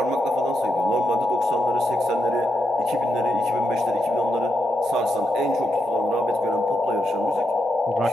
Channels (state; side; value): normal; both; correlation 0.83